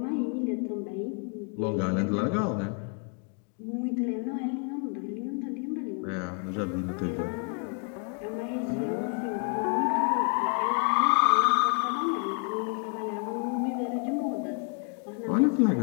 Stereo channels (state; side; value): quieter; right; 37.9 dB